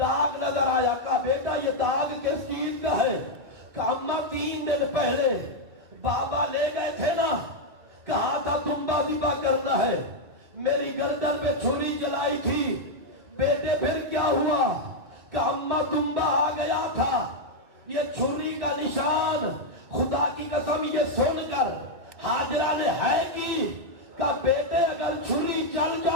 نظر آیا. کہا بیٹا یہ داغ کس چیز کا ہے؟ کہا اماں 3 دن پہلے بابا لے گئے تھے نا, کہا تھا تنبا ذبح کرنا ہے, میری گردن پہ چھری چلائی تھی. بیٹے پھر کیا ہوا؟ کہا اماں تنبا آ گیا تھا, یہ چھری کا نشان. خدا کی قسم یہ سن کر ہاجرہ نے ہے کی, کہا بیٹے اگر چھری چل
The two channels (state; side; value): late; left; 2.0 ms